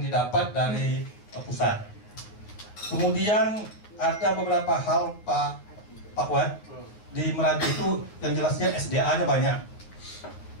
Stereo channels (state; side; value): late; right; 9.8 ms